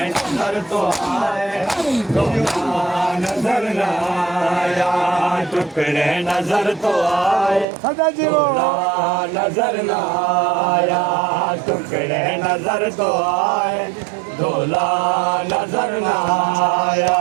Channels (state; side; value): drops out; left; at 7.7 s